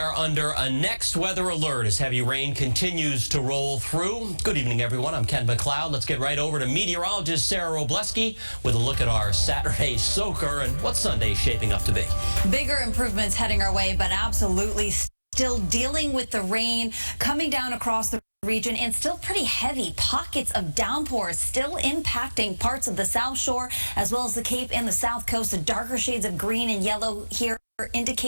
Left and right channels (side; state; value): both; inverted; correlation -1.00